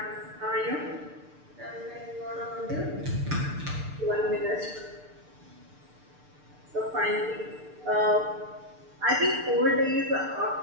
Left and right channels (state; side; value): late; left; 6.7 ms